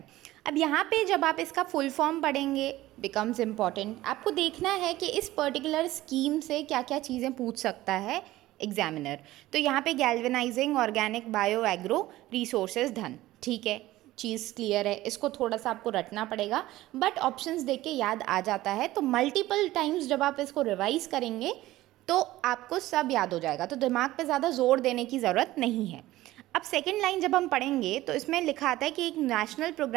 अब यहाँ पे जब आप इसका फुल फॉर्म पढ़ेंगे बिकम्स इम्पॉर्टेंट, आपको देखना है कि इस पर्टिकुलर स्कीम से क्या क्या चीज़ें पूछ सकता है एग्जामिनर। तो यहाँ पे galvanising organic bio agro resources धन, ठीक है, चीज़ क्लियर है। इसको थोड़ा सा आपको रटना पड़ेगा, बट ऑप्शंस देख के याद आ जाता है। तो मल्टीपल टाइम्स जब आप इसको रिवाइज करेंगे तो आपको सब याद हो जाएगा, तो दिमाग पे ज़्यादा जोर देने की ज़रूरत नहीं है। अब सेकंड लाइन जब हम पढ़ेंगे तो इसमें लिखा आता है कि एक नेशनल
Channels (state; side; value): quieter; left; 16.4 dB